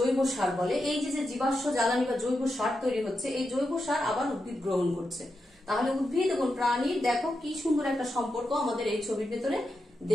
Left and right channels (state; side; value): normal; both; correlation 0.87